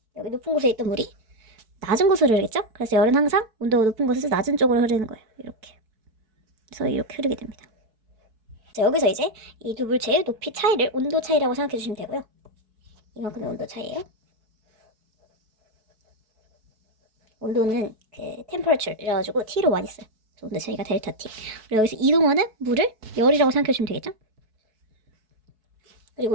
여기 높은 곳에 있던 물이 낮은 곳으로 흐르겠죠. 그래서 열은 항상 온도가 높은 곳에서 낮은 쪽으로 흐르는 거예요. 이렇게. 그래서 이렇게 흐르게 됩니다. 자, 여기서 이제 이 두 물체의 높이 차이를 온도 차이라고 생각해 주시면 되고요. 이만큼의 온도 차이예요. 온도는 temperature 이래가지고 T로 많이 써요. 온도 차이가 델타 T. 그리고 여기서 이동하는 물을 열이라고 생각해 주시면 되겠죠?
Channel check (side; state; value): left; late; 4.6 ms